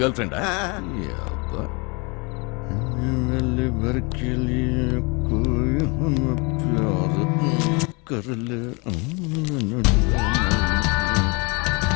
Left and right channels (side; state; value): right; quieter; 29.8 dB